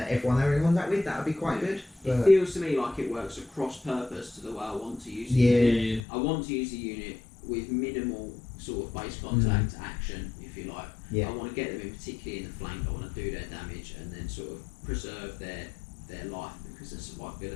they were in contact with, that would be quite good. It But feels to me like it works across purpose to the way I want to use it. yeah, I want to use a unit with minimal sort of base contact action, if you like. Yeah. I want to get them in particularly in the flank. I want to do their damage and then sort of preserve their life because the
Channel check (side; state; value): right; drops out; at 6.0 s